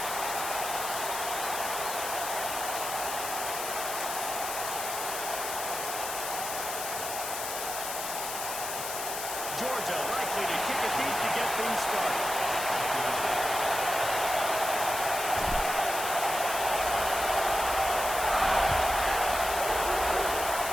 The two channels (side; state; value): left; noise; hiss, 5 dB below the sound